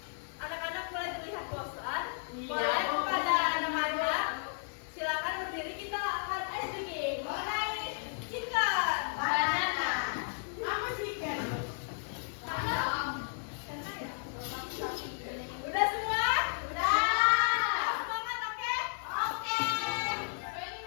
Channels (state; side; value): silent; right; 55 dB below the other